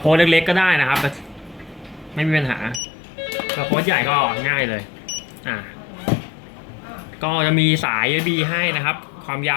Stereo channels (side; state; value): right; drops out; at 2.8 s